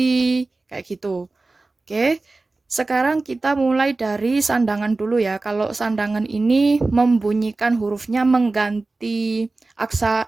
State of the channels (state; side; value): quieter; left; 3.4 dB